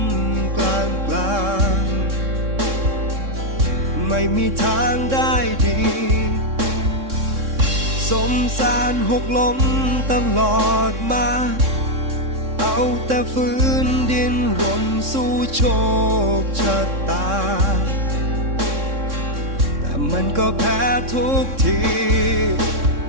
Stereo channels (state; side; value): late; left; 3.6 ms